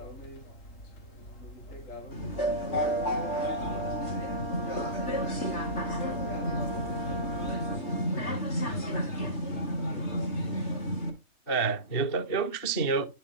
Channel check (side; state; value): right; late; 3.3 ms